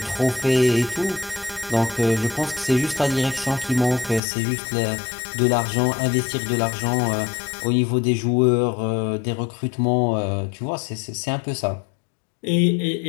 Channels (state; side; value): drops out; right; at 4.2 s